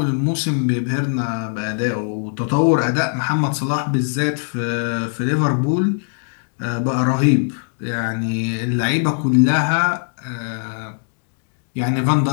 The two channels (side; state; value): right; silent; digital silence